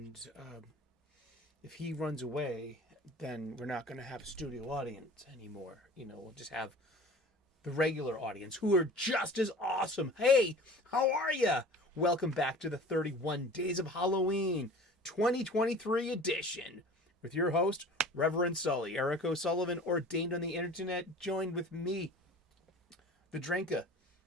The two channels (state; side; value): normal; both; correlation 0.42